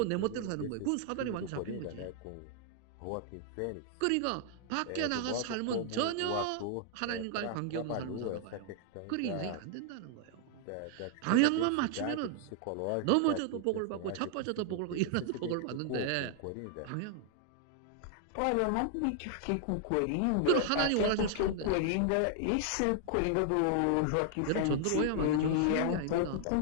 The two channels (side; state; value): both; different; correlation 0.00